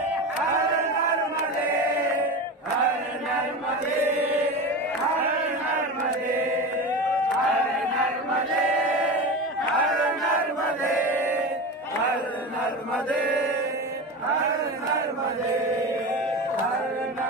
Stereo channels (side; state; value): both; normal; correlation 0.25